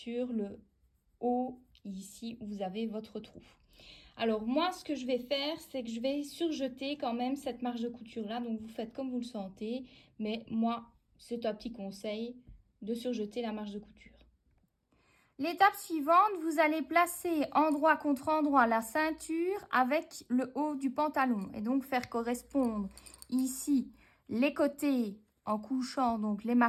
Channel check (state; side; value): identical; both; correlation 1.00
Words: le haut, ici où vous avez votre trou. Alors, moi, ce que je vais faire, c'est que je vais surjeter quand même cette marge de couture-là. Donc, vous faites comme vous le sentez. Mais moi, c'est un petit conseil de surjeter la marge de couture. L'étape suivante, vous allez placer endroit contre endroit la ceinture avec le haut du pantalon. Et donc, faire correspondre ici les côtés en couchant donc les